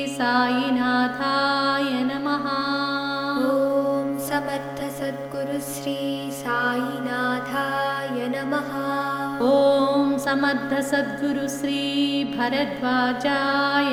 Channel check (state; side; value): identical; both; correlation 1.00